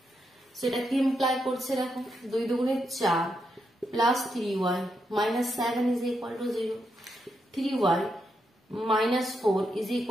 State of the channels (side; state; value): both; normal; correlation 0.82